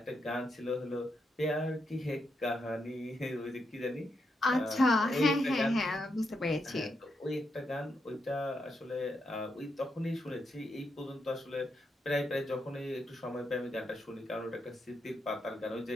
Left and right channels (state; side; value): normal; both; correlation 0.82